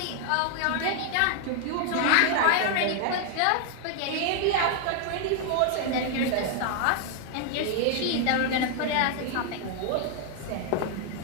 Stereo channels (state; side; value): different; both; correlation 0.00